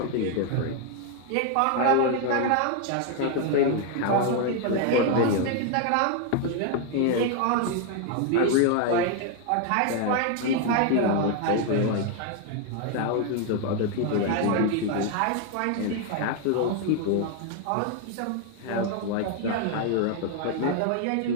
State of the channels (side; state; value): both; different; correlation 0.01